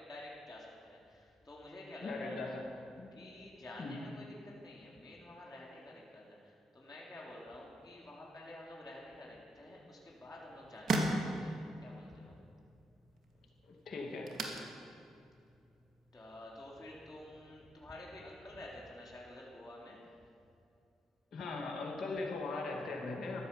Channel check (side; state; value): both; normal; correlation 0.78